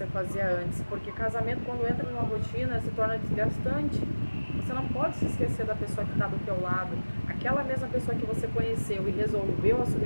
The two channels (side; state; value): both; inverted; correlation -1.00